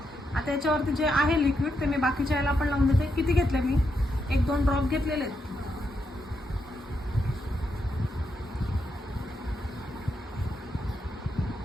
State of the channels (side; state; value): both; normal; correlation 0.82